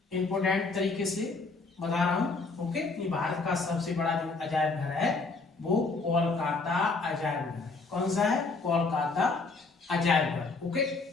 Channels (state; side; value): quieter; right; 3.9 dB